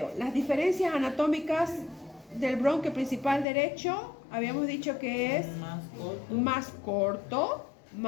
las diferencias anatómicas del bronquio principal derecho, habíamos dicho que es más corto,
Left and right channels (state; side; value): drops out; right; at 3.5 s